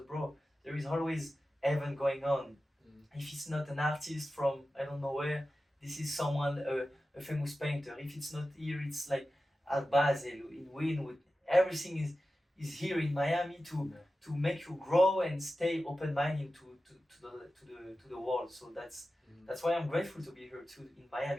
bro, there is always event going on. If it's not an artist from I don't know where, this is someone a famous painter. If it's not here, it's like at Basel, in Wynwood. Everything is here in Miami to make you grow and stay open-minded to the world. So that's why I'm grateful to be here too in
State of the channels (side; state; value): both; normal; correlation 0.94